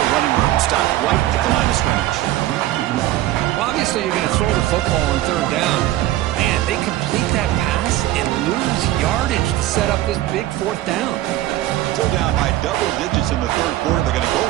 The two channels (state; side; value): quieter; left; 14.9 dB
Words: room. Stopped right at the line of scrimmage. Well, obviously, you're going to throw the football on 3rd down. Man, they complete that pass and lose yardage to set up this big 4th down. Still down by double digits in the 3rd quarter. They're going to go